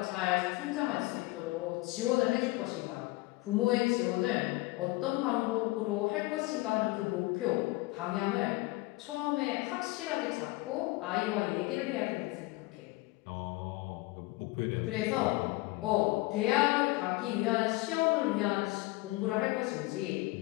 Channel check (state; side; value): quieter; right; 21.5 dB